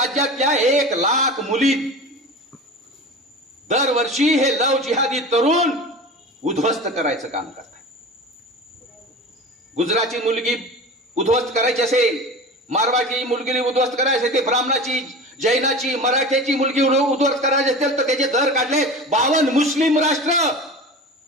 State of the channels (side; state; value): both; normal; correlation 0.33